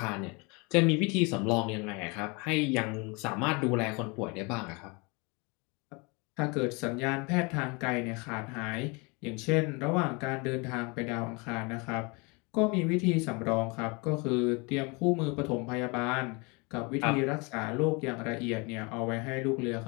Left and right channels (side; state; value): right; quieter; 29.2 dB